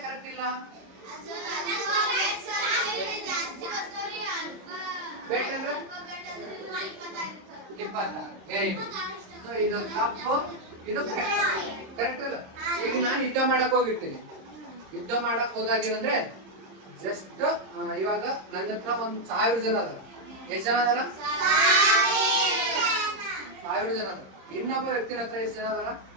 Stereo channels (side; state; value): left; late; 26 ms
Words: ಕರೆಕ್ಟ್ ಇಲ್ಲ ಬೆಟ್ ಅಂದ್ರೆ 20 ವೆರಿ ಗುಡ್ ಸೊ ಇದು ತಪ್ಪು ಇದು ಕರೆಕ್ಟ್ ಇಲ್ಲ ಈಗ ನಾನು ಯುದ್ಧ ಮಾಡಕ್ ಹೋಗಿರ್ತೀನಿ ಯುದ್ಧ ಮಾಡಕ್ ಹೋದಾಗ ಏನಂದ್ರೆ ಜಸ್ಟ್ ಇವಾಗ ನನ್ನ ಹತ್ರ 1000 ಜನ ಅದ ಎಷ್ಟು ಜನ ಅದಾರ 1000 ಜನ ಅದ ಇನ್ನೊಬ್ಬ ವ್ಯಕ್ತಿನ ಹತ್ರ ಎಷ್ಟು ಜನ ಅದಾರ